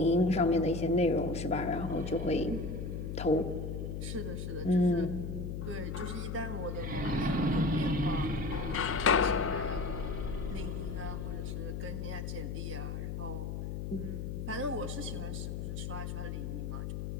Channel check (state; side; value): noise; left; hum, 4 dB below the sound